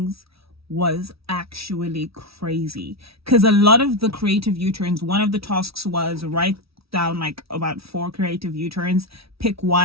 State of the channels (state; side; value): late; left; 0.76 ms